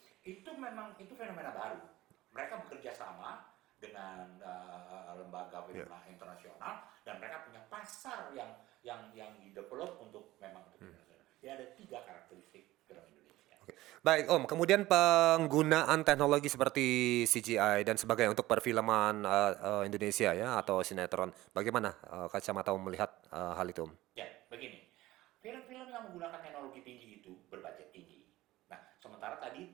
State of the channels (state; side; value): quieter; left; 17.1 dB